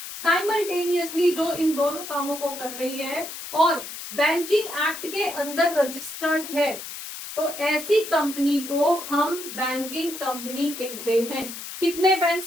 साइमल्टेनियसली जो इन दोनों कामों को कर रही है और बैंकिंग एक्ट के अंदर रजिस्टर्ड है, तो ऐसी कंपनी को हम बैंकिंग कंपनी कहते हैं। कितने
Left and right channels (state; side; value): noise; left; hiss, 10 dB below the sound